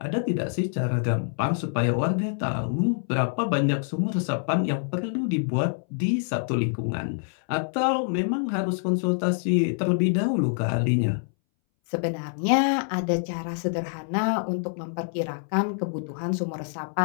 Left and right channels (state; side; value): silent; right; 61 dB below the other